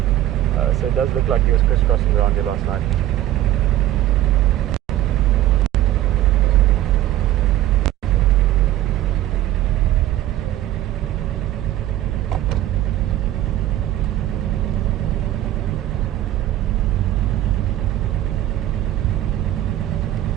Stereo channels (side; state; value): left; quieter; 13.6 dB